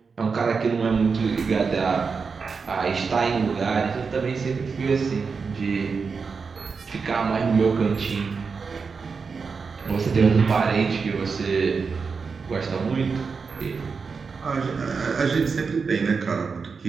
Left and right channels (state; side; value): quieter; left; 5.2 dB